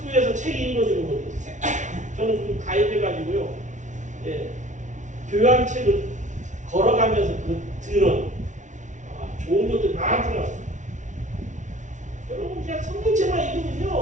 책 읽어주는 것도 있어요. 저는 좀 가입해가지고요. 예, 교양책을 걸어가면서 들은 좋은 것들 많더라고요. 여러분 그냥 성경책만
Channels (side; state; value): left; late; 0.36 ms